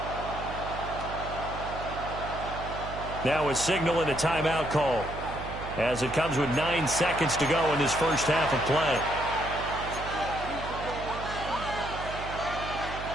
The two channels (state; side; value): noise; right; hum, 9 dB below the sound